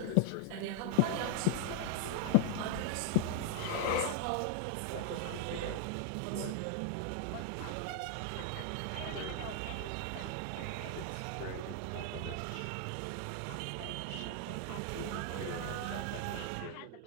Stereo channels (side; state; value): both; different; correlation 0.00